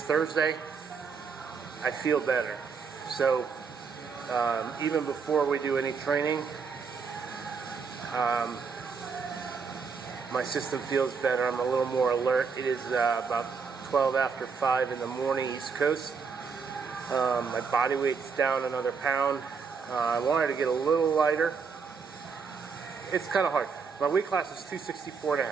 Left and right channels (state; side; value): quieter; left; 5.5 dB